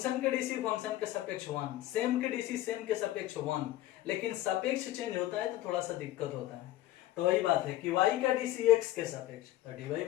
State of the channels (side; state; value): right; quieter; 14.8 dB